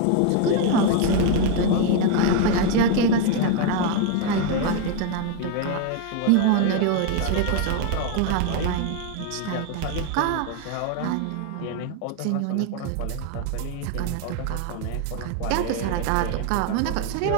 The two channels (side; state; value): both; different; correlation 0.01